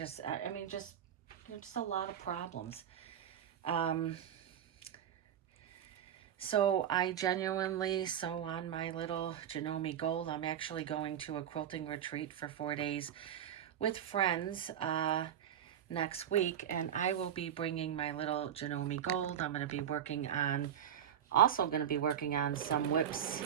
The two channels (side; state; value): left; quieter; 9.6 dB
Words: I mean, just a lot of problems. So I genuinely sew on my little Janome Gold. I'm actually going to a quilting retreat for 4 days with friends next week, and I will be bringing my little Janome Gold. I'm going to be working on, also going to be working on some WIPs.